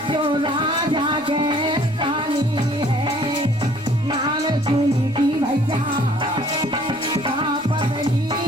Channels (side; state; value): left; noise; rumble, 28 dB below the sound